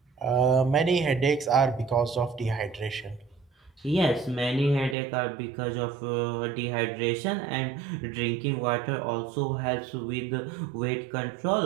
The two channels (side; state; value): left; drops out; at 5.0 s